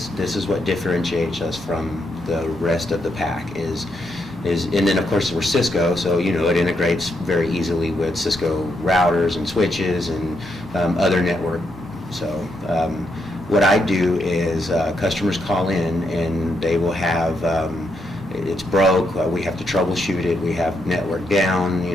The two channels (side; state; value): both; normal; correlation 0.79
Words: is what differentiates us from the rest of the pack is, and then of course we're Cisco, so it integrates very easily with Cisco routers and switches and other network. So what I do is customers call in and they will have it's broke. We have to troubleshoot it. We have network down.